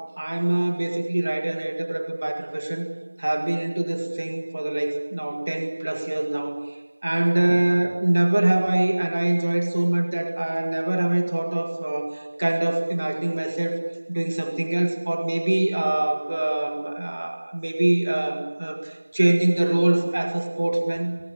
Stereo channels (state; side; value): inverted; both; correlation -1.00